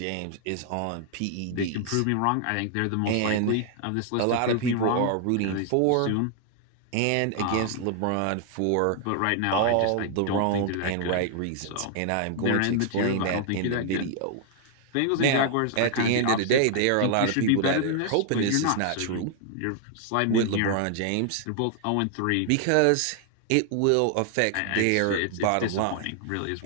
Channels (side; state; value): both; different; correlation 0.00